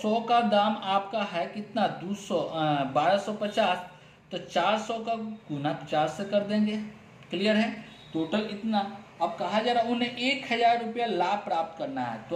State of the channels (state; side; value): identical; both; correlation 1.00